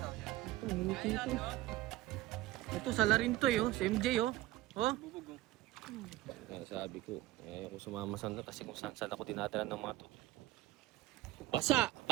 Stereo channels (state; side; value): quieter; left; 15.7 dB